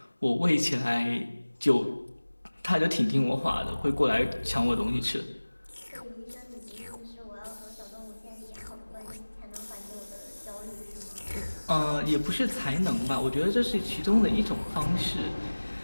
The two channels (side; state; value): both; inverted; correlation -1.00